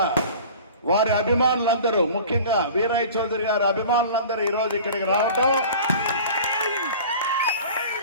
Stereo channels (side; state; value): both; inverted; correlation -0.41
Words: వారి అభిమానులందరూ, ముఖ్యంగా వీరయ్య చౌదరి గారి అభిమానులందరూ ఈరోజు ఇక్కడికి రావటం,